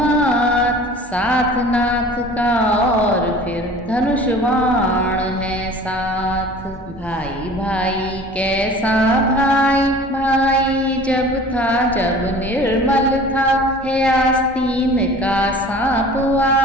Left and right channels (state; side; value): normal; both; correlation 0.44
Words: साथ नाथ का और फिर धनुष बाण है साथ। भाई भाई कैसा भाई, भाई जब था जब निर्मल था। है आस्तीन का सांप